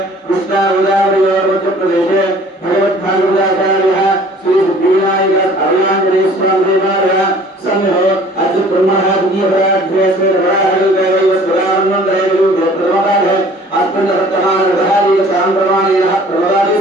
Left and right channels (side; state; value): both; normal; correlation 0.51